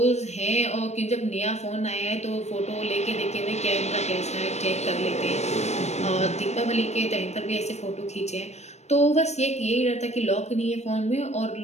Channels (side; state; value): right; late; 0.32 ms